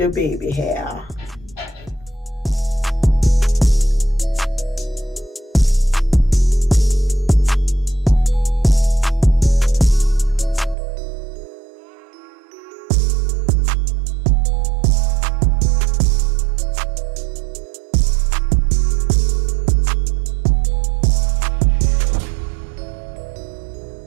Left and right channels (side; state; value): left; drops out; at 10.8 s